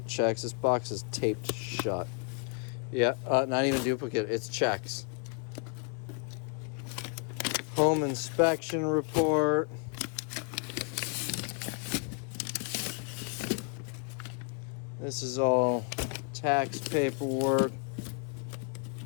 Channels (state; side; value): quieter; right; 36.3 dB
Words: checks. This box is taped shut. Yeah, not even duplicate, it's checks. Home inspection report. This is all tax paperwork.